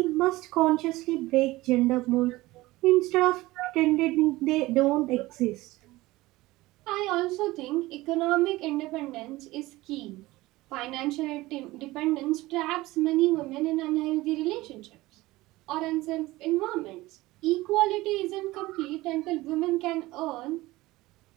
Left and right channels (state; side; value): quieter; left; 19.1 dB